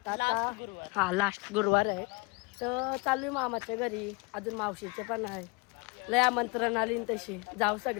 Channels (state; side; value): quieter; right; 29.5 dB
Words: आता लास्ट गुरुवार आहे. तर चालू आहे मामाच्या घरी. अजून मावशीचे पण आहे. लय आमंत्रण आली तशी जाऊ